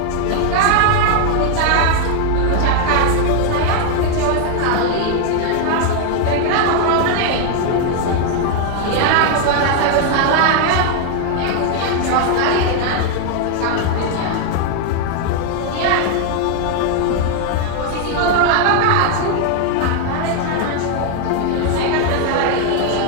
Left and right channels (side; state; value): both; different; correlation 0.00